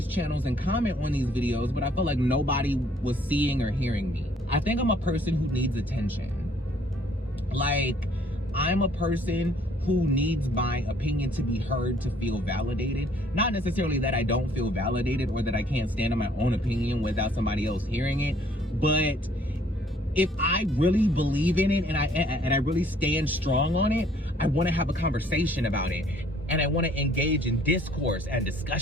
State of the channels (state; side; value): normal; both; correlation 0.61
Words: channels and comment on these videos, but I felt like nobody was seeing or hearing me. I think I'm a person who needs attention. Like, I'm a person who needs my opinion to be heard, to feel validated. Not necessarily that I don't feel validated or that I can't stand on my own opinion without somebody else hearing it, but if I really believe in it and I really stand strong on it, I want to have a conversation about it, and I want to engage in discourse and